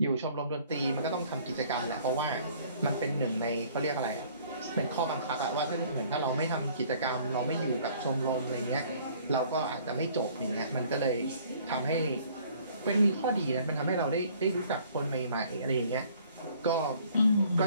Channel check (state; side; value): inverted; both; correlation -0.56